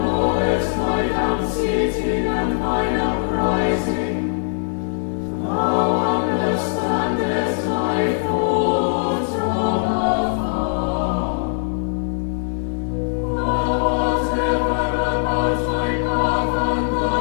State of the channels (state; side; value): silent; right; 59 dB below the other